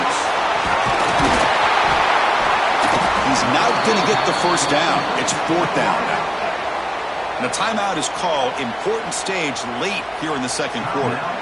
He's not going to get the first down. It's fourth down now. And a timeout is called. Important stage late here in the second quarter.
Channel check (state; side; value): identical; both; correlation 1.00